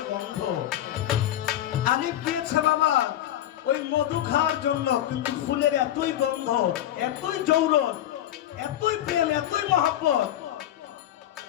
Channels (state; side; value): quieter; right; 12.4 dB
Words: গন্ধ। আলিফ গিয়েছে বাবা ওই মধু খাওয়ার জন্য, কিন্তু ফুলের এতই গন্ধ, এতই জৌলস, এতই প্রেম, এতই মহব্বত।